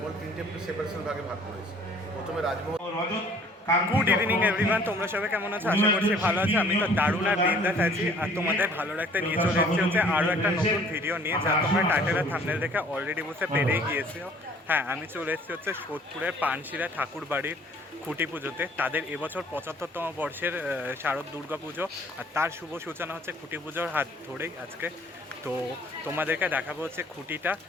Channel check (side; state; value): both; normal; correlation 0.55